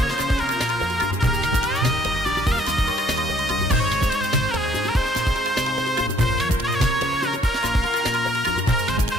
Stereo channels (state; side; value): normal; both; correlation 0.63